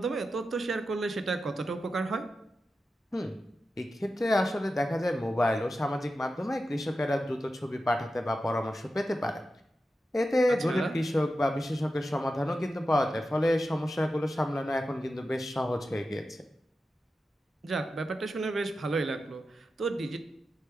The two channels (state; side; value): normal; both; correlation 0.91